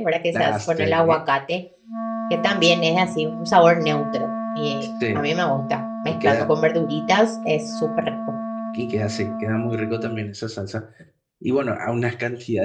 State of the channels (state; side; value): identical; both; correlation 1.00